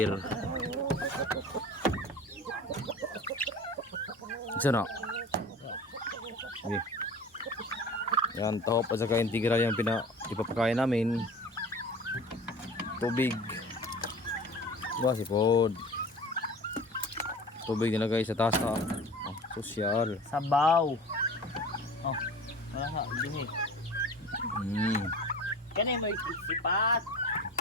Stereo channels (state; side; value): normal; both; correlation 0.39